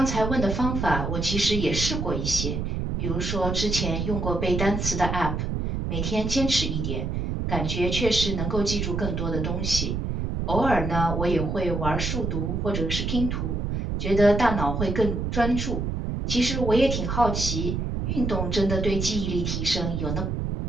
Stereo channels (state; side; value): noise; right; rumble, 2 dB below the sound